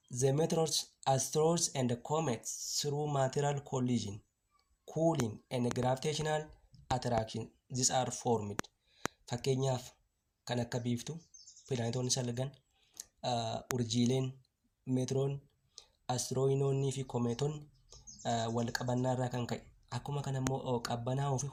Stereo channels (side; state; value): both; identical; correlation 1.00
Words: the meteors, asteroids and comets through material collision, cooling and gravitational attraction these are formed. Fakkeenyaaf kan akka biiftuu pilaanetoonni salgan urjiileen meetiroon asteroidoonnii fi komeetonni wal qabannaa irraa kan ka'e akkuma kana immoo qabbanaa fi